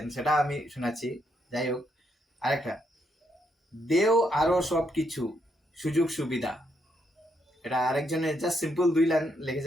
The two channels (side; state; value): both; normal; correlation 0.77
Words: সেটা আমি শোনাচ্ছি। যাই হোক, আরেকটা, দেও আরো সবকিছু সুযোগ সুবিধা। এটা আরেকজনের জাস্ট সিম্পল 2 লাইন